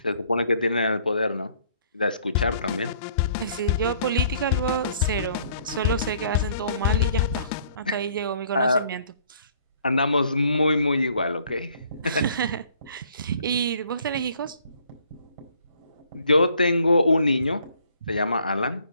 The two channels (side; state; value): both; inverted; correlation -0.60